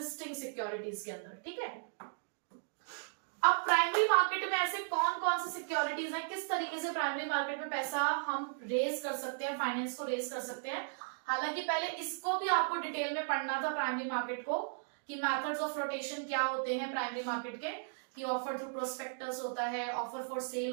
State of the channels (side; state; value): left; silent; digital silence